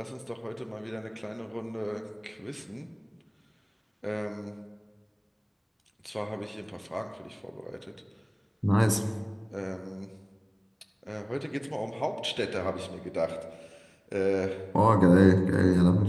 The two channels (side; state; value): both; identical; correlation 1.00